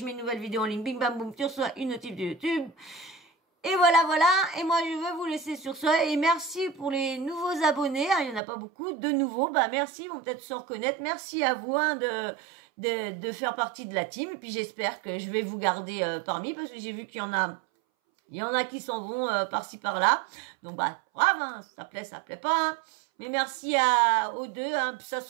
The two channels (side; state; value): left; drops out; at 8.4 s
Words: mets une nouvelle vidéo en ligne, bing bam boum, tu reçois une notif de YouTube. Et voilà, et moi je veux vous laisser sur ça, et merci pour les nouveaux abonnés, il y en a pas beaucoup, de nouveaux, merci, ils vont peut-être se reconnaître, merci à vous de faire partie de la team, et puis j'espère que je vais vous garder parmi, parce que j'ai vu qu'il y en a qui s'en vont par-ci par-là, donc brave, ça plaît pas, mais merci aux deux, ça